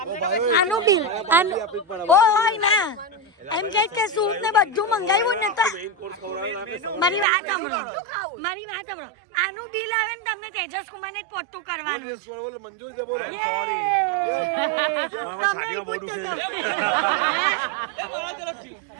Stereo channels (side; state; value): left; drops out; at 7.2 s